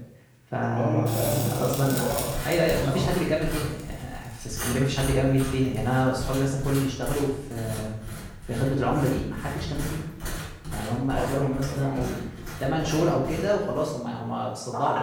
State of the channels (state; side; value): identical; both; correlation 1.00